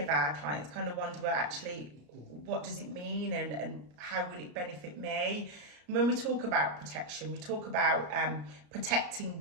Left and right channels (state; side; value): late; left; 34 ms